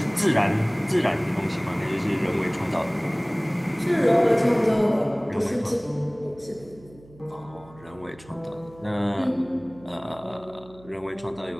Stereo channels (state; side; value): noise; right; hum, 23 dB below the sound